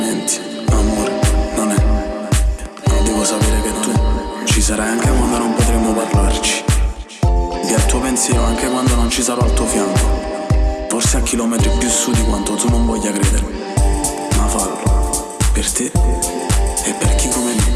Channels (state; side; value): identical; both; correlation 1.00